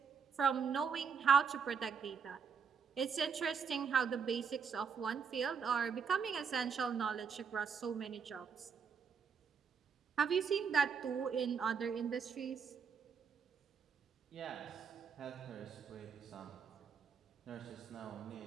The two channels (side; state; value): left; quieter; 6.4 dB